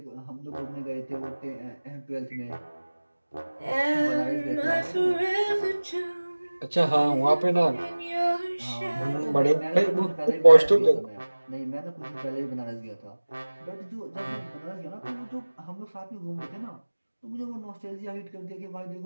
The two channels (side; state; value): both; inverted; correlation -1.00